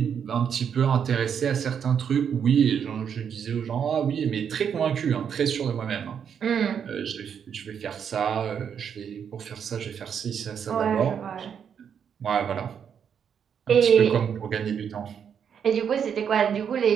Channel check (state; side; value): quieter; left; 7.8 dB